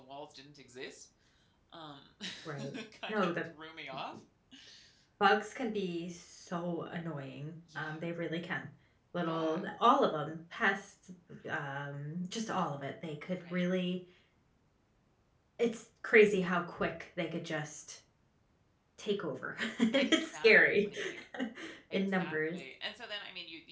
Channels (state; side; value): identical; both; correlation 1.00